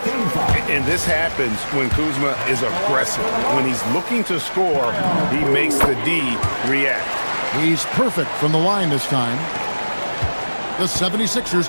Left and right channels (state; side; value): inverted; both; correlation -1.00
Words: And this happens when Kuzma is aggressive. When he's looking to score, he makes the D react. He's perfect from the line this time. The